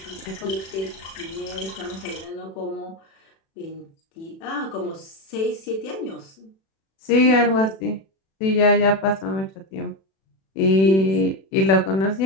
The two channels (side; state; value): right; late; 36 ms